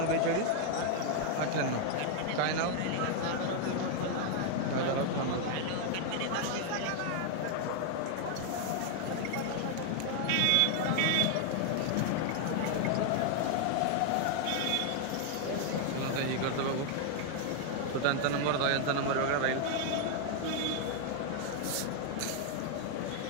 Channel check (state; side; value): different; both; correlation 0.00